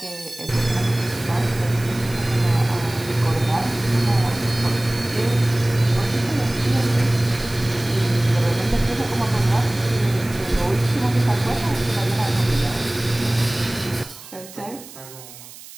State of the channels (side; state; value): right; noise; hiss, 17 dB below the sound